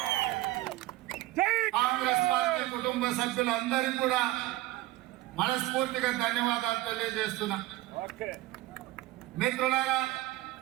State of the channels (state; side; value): quieter; left; 17.0 dB